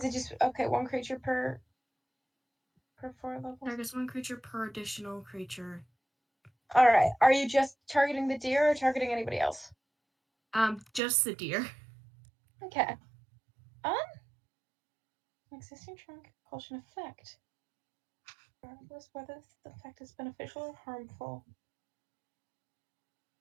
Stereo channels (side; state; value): left; drops out; at 11.0 s